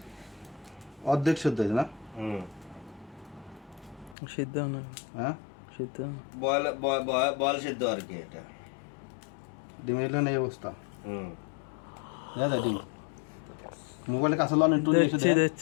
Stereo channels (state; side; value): drops out; right; at 4.2 s